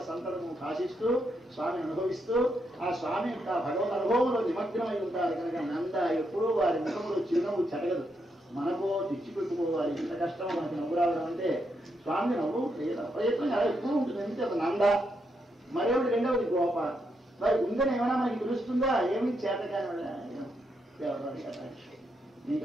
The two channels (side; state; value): both; normal; correlation 0.80